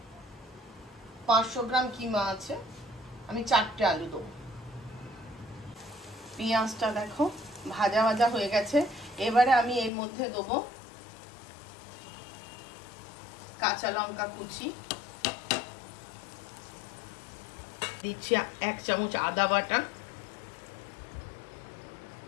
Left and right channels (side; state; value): right; drops out; at 9.9 s